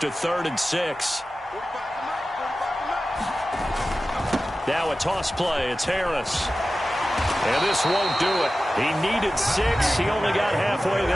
a 3rd and 6. Now a toss play. It's Harris. And this won't do it. He needed 6. He only got halfway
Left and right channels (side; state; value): both; normal; correlation 0.95